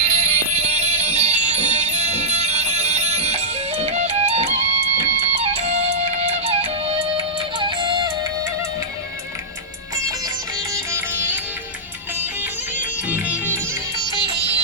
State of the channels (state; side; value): normal; both; correlation -0.11